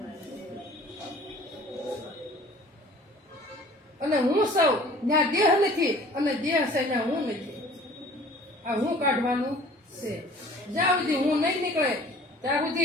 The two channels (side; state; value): both; normal; correlation 0.49